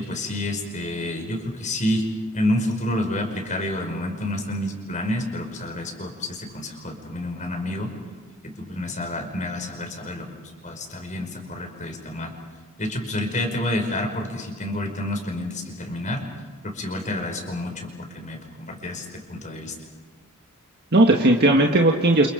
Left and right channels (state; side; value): normal; both; correlation 0.49